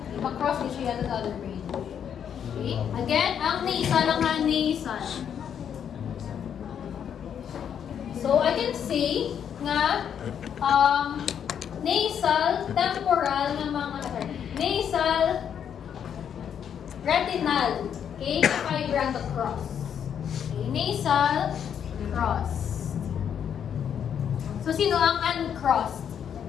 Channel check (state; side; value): quieter; right; 8.5 dB